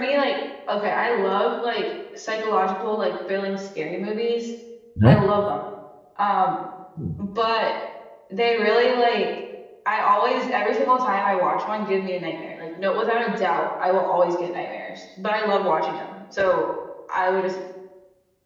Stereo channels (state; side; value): identical; both; correlation 1.00